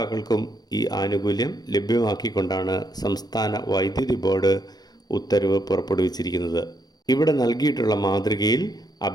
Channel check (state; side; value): late; right; 0.19 ms